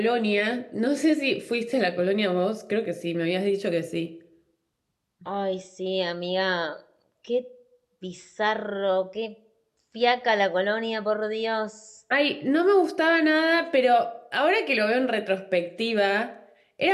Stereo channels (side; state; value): both; identical; correlation 1.00